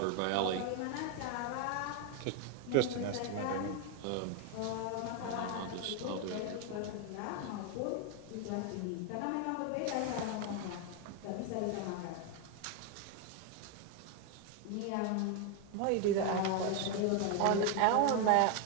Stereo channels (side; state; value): both; different; correlation 0.01